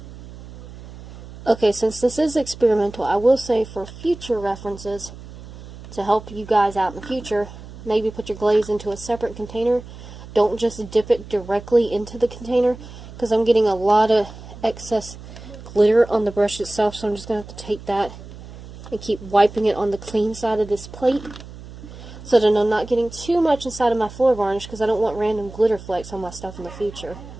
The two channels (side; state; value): right; noise; hum, 15 dB below the sound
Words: Okay, since this is experimental, I will say for future references, to help you guys out in the future, maybe put your glaze into a separate container. Don't just dip it directly into the container, because I'm getting a lot of excess glitter on the brush itself, so I'm just going to have to take that and keep wiping it on the clean side of this plate, so that I'm not getting too much inside of my floor varnish, because I don't want random glitter flakes on my stuff in the future.